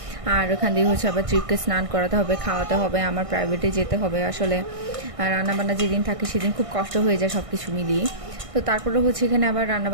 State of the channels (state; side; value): late; left; 1.6 ms